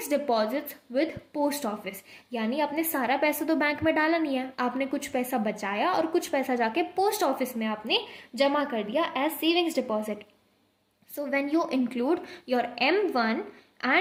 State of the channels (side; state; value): both; identical; correlation 1.00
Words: deposits with post office. यानी आपने सारा पैसा तो बैंक में डाला नहीं है, आपने कुछ पैसा बचाया और कुछ पैसा जाके पोस्ट ऑफिस में आपने जमा कर दिया as savings deposit. So when you include your M1